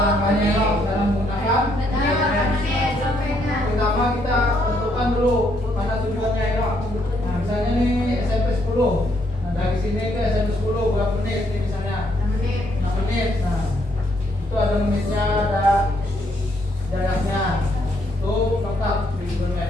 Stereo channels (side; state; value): both; normal; correlation 0.72